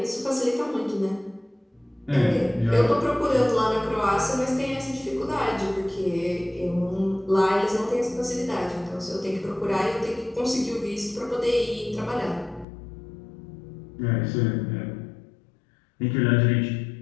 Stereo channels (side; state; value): right; drops out; at 12.7 s